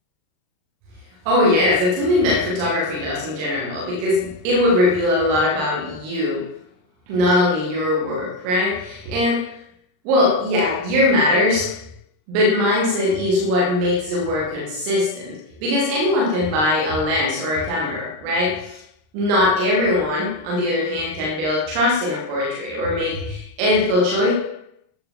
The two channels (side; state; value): left; late; 39 ms